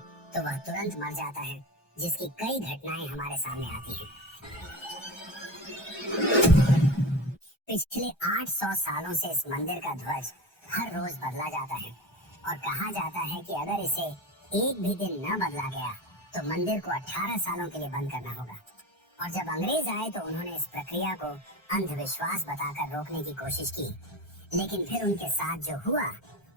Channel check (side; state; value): right; late; 1.3 ms